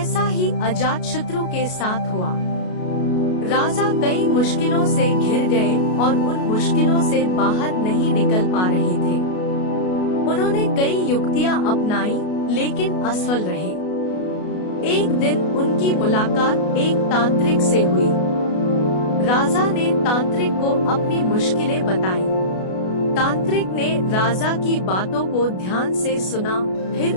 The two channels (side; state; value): right; late; 33 ms